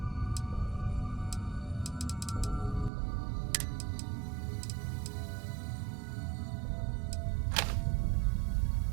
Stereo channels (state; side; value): drops out; left; at 2.9 s